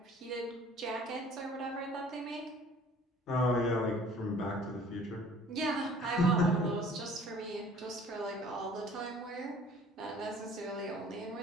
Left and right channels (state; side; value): normal; both; correlation 0.51